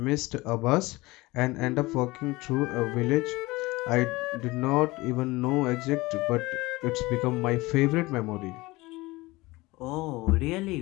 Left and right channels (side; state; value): right; quieter; 21.2 dB